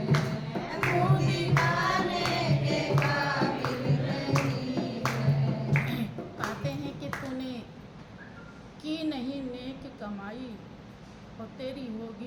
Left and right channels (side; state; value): both; identical; correlation 1.00